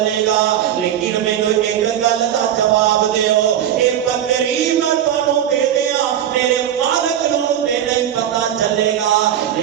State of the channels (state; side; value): quieter; left; 10.5 dB